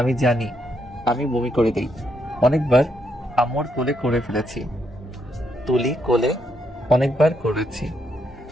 জানি, আমি বমি করে দিই। অনেকবার আম্মুর কোলে করে ফেলেছি, তুলি কোলে অনেকবার করেছি।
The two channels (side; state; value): both; normal; correlation 0.77